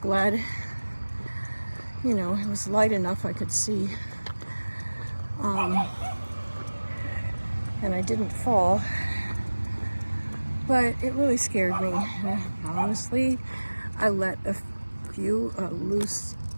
you know, it was light enough I could see. And I didn't fall. But it really scared me. Honestly, I let a few loose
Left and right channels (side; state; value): both; inverted; correlation -1.00